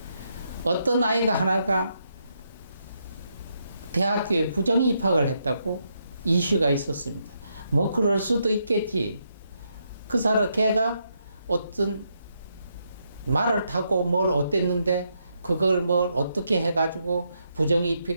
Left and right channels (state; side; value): inverted; both; correlation -0.79